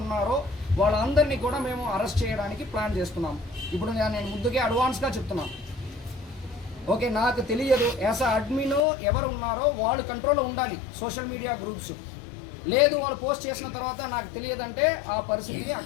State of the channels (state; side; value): drops out; right; at 8.8 s